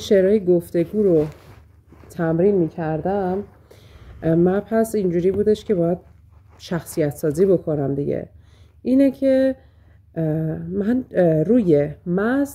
گفتگو رو تمرین میکردم، من پس اینجوری بودش که باید شخصیت سازی بکنم دیگه. اینه که من روی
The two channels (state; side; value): identical; both; correlation 1.00